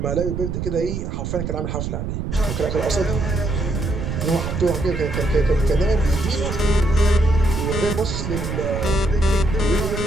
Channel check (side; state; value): right; noise; rumble, 3 dB below the sound